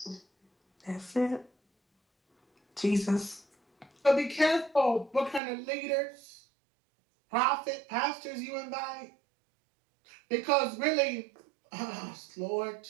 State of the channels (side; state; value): left; drops out; at 5.4 s